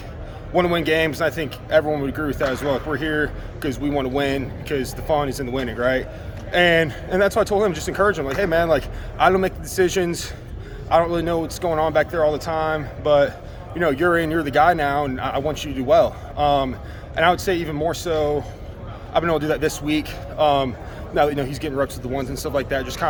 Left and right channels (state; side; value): identical; both; correlation 1.00